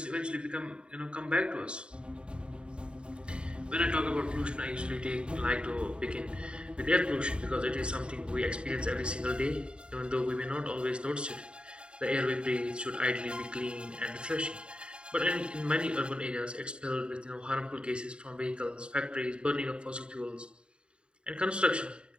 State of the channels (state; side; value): late; left; 0.053 ms